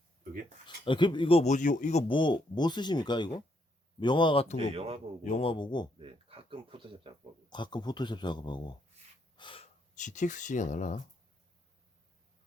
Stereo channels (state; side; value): normal; both; correlation 0.74